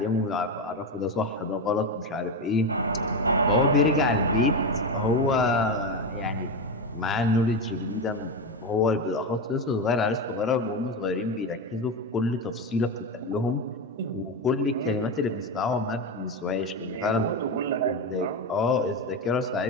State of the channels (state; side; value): normal; both; correlation 0.14